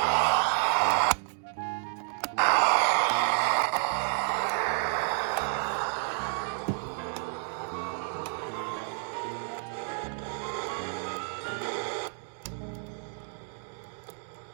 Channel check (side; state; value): left; silent; 56 dB below the other